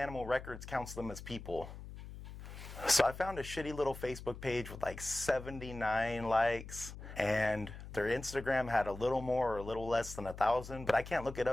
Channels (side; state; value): left; noise; hum, 12 dB below the sound